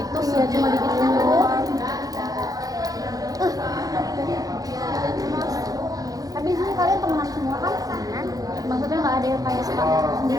sih ya cuma gitu tapi di sini kalian temenan semua kan maksudnya nggak ada yang kayak suka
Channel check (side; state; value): left; late; 0.18 ms